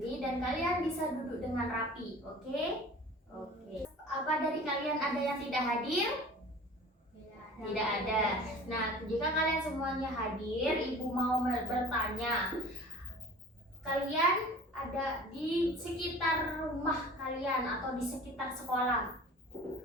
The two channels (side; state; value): both; normal; correlation 0.43